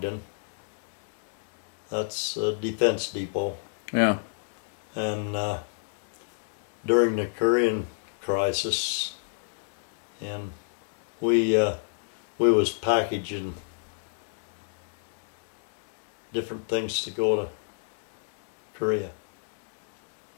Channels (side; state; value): right; silent; digital silence